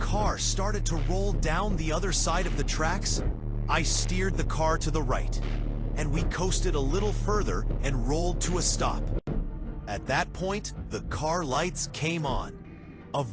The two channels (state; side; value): identical; both; correlation 1.00